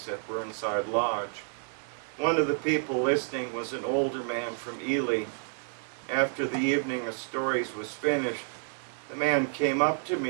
at Burnside Lodge. One of the people listening was an older man from Ely. After the evening of stories was finished, the man came up to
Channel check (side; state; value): left; silent; 58 dB below the other